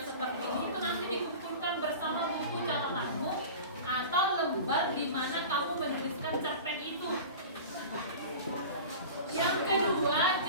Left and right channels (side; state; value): both; inverted; correlation -0.35